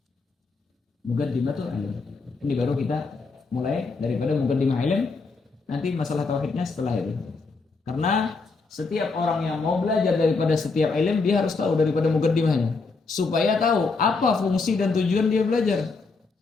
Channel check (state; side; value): quieter; right; 4.1 dB